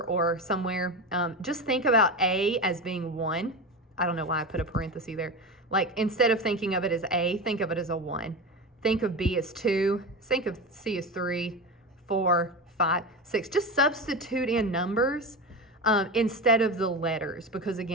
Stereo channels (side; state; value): both; normal; correlation 0.22